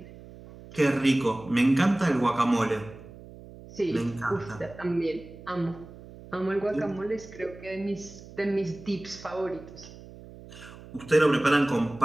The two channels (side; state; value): right; noise; hum, 18 dB below the sound